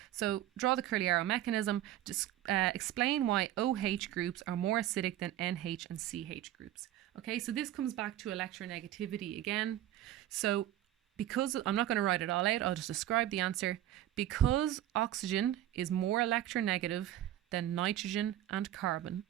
So draw the curly arrow mechanism, just explain why OH groups are more acidic than NH and CH groups. Okay, so this comes back to electronegativity again. So because, I'm not going to write it all out, I'll just describe the answer. Because oxygen is more electronegative than nitrogen and carbon,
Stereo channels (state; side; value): quieter; left; 13.1 dB